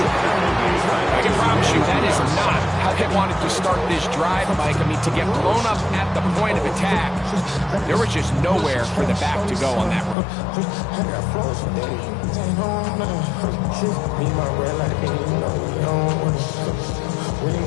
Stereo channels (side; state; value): right; drops out; at 10.2 s